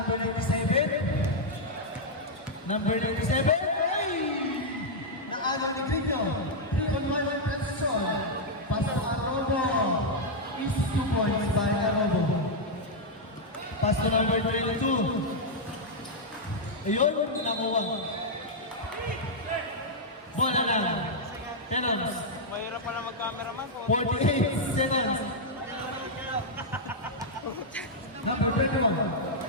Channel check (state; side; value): normal; both; correlation -0.04